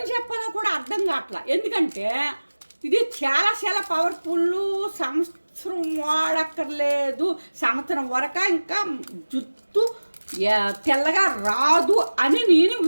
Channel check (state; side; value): inverted; both; correlation -1.00